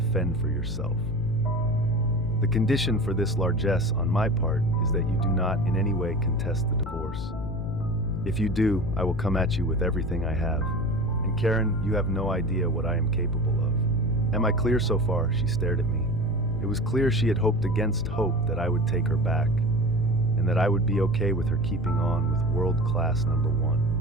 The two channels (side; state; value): left; noise; hum, 10 dB below the sound